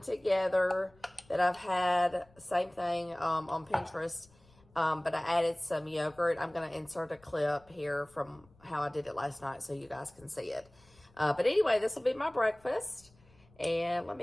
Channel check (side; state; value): left; noise; rumble, 29 dB below the sound